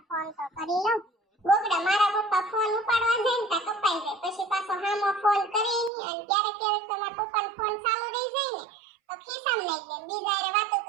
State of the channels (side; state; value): left; drops out; at 5.9 s